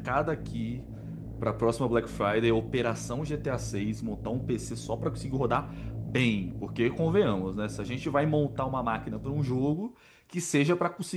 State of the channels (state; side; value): identical; both; correlation 1.00